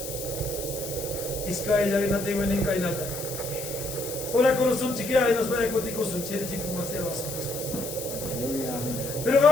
Iskaya, y no tengo ni cainata. Hola, con un chiquilla y nos vaya contigo, un chile chico más hermoso. Pero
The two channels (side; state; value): left; noise; hiss, 8 dB below the sound